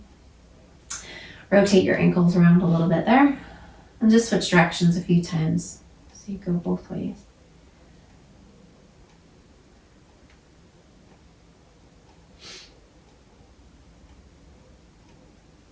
Rotate your ankles around a little bit there and just switch directions a few times so you go both ways.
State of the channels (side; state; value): both; identical; correlation 1.00